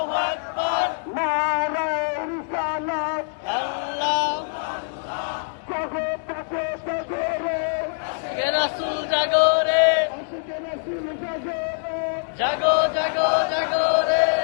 জাগো জাগো জাগো রে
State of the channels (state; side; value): silent; right; digital silence